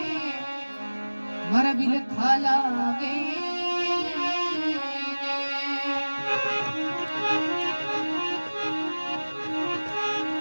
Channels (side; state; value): both; inverted; correlation -1.00